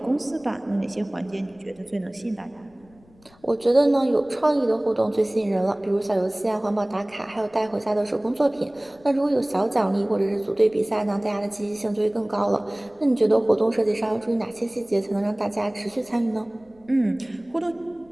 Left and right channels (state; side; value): noise; left; rumble, 29 dB below the sound